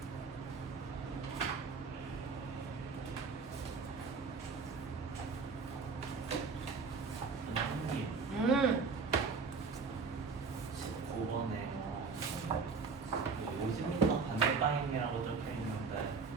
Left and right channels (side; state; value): left; quieter; 4.8 dB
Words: 선생님 음. 19번에 50m 반대 방향이라고 적혀 있는데